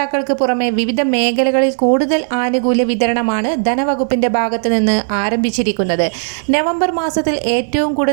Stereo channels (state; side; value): silent; left; digital silence